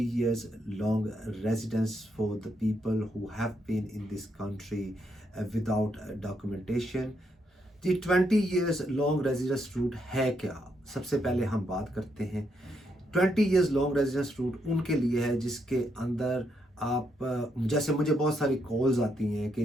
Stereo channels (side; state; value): both; normal; correlation 0.78